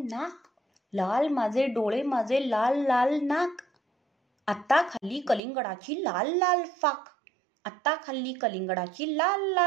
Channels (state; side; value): drops out; left; at 5.4 s